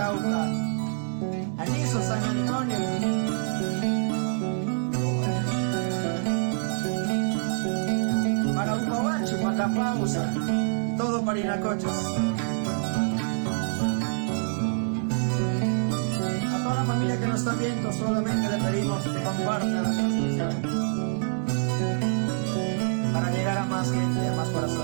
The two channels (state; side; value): silent; left; 61 dB below the other